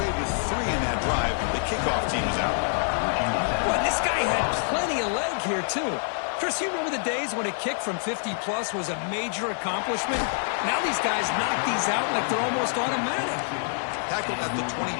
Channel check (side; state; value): right; silent; 61 dB below the other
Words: with 3 in that drive, the kickoff team is out. Well, this guy had plenty of leg here, too. Chris, you remember the days when a kick from 50-plus was a major accomplishment? Now these guys knock these out like they're almost automatic. Tackled at the